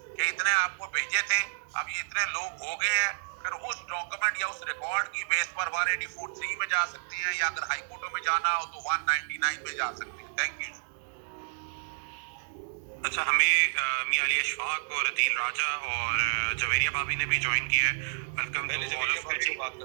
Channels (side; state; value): left; silent; digital silence